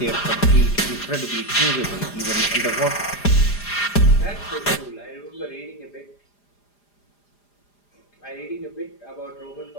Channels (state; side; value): late; right; 4.9 ms